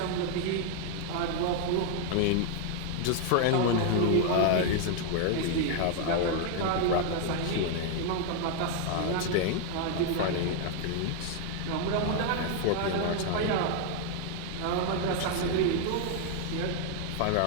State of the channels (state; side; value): different; both; correlation 0.00